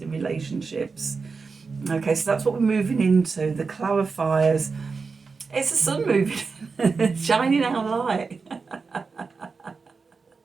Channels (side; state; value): left; quieter; 4.7 dB